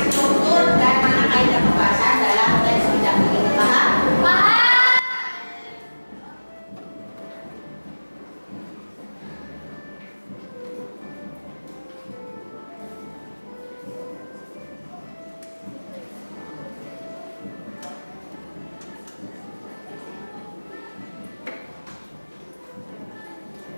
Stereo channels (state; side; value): inverted; both; correlation -1.00